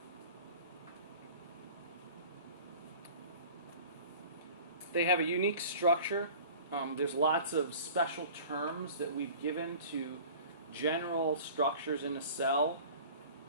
They have a unique structure. There's lots of special terms that we've given to general structures in a cell.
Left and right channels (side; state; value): both; inverted; correlation -0.43